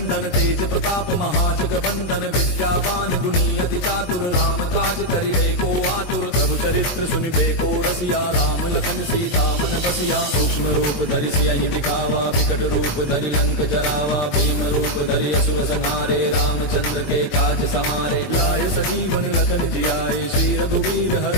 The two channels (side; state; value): right; late; 22 ms